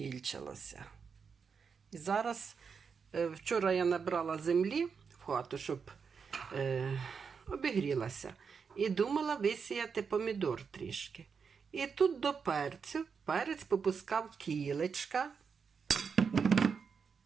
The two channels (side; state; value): left; quieter; 5.9 dB